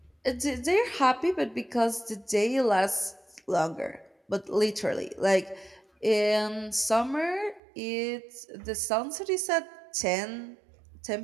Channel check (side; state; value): left; drops out; at 7.6 s